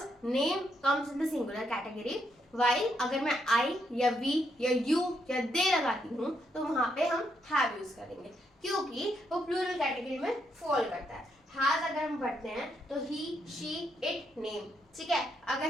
name comes in the singular category. While अगर मैं आई या वी या यू या दे लगाती हूँ तो वहां पे हम हैव यूज करेंगे, क्योंकि वो प्लूरल कैटेगरी में फॉल करता है। हैज अगर हम पढ़ते हैं तो ही, शी, इट, नेम। ठीक है,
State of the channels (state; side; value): normal; both; correlation 0.78